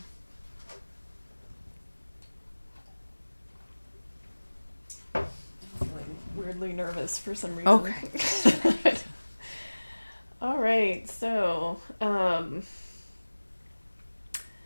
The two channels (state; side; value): inverted; both; correlation -1.00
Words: I'm feeling weirdly nervous for some reason. Okay. All right, so